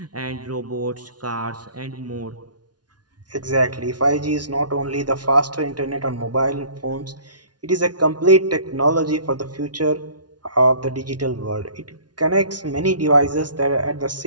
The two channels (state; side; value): late; left; 0.69 ms